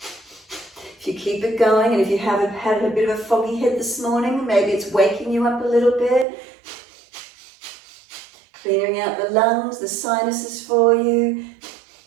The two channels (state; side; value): drops out; left; at 6.2 s